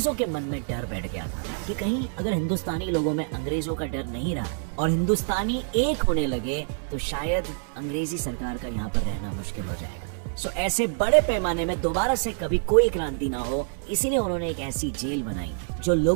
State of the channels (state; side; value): silent; left; digital silence